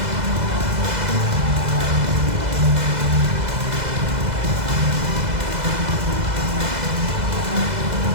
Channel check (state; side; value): late; left; 2.0 ms